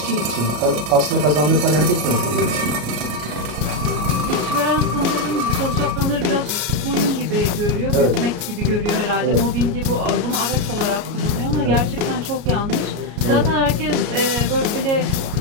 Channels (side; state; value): left; late; 33 ms